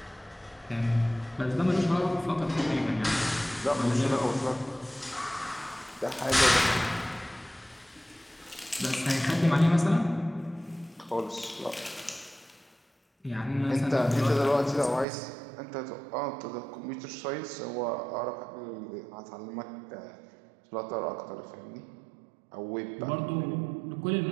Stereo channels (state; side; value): drops out; left; at 15.1 s